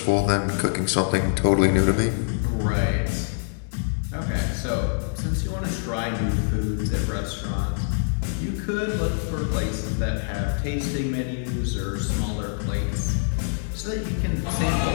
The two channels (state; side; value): silent; right; digital silence